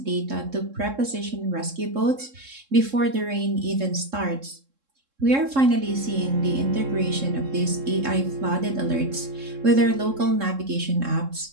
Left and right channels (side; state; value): left; late; 3.7 ms